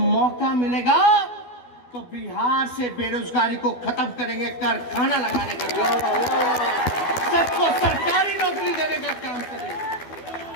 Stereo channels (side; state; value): right; late; 12 ms